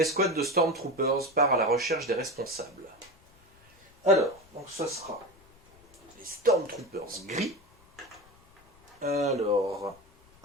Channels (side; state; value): left; noise; rumble, 28 dB below the sound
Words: de Stormtroopers part à la recherche des responsables. Alors, donc ça sera les Stormtroopers gris. Alors,